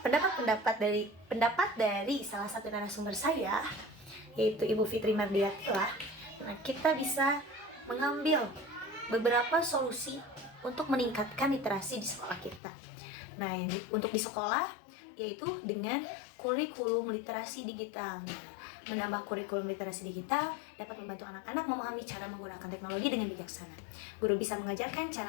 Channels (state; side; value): drops out; right; at 12.6 s